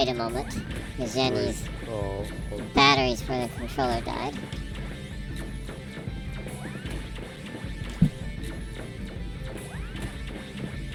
a moment. The Jenny's batteries for the controller died.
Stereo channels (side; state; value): both; identical; correlation 1.00